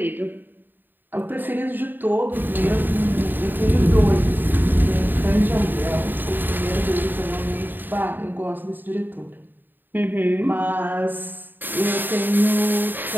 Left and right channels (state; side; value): late; left; 0.092 ms